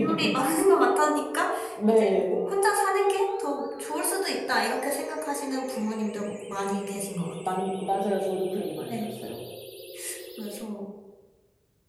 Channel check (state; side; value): identical; both; correlation 1.00